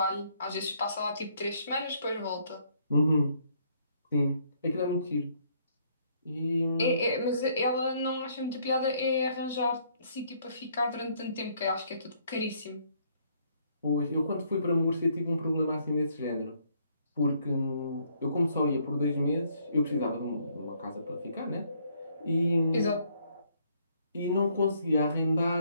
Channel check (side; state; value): both; inverted; correlation -0.68